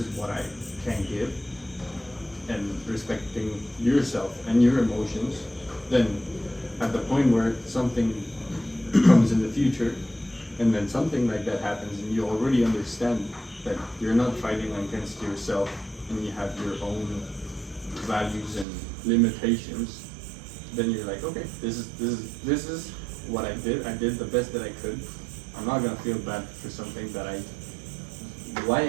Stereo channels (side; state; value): left; drops out; at 18.7 s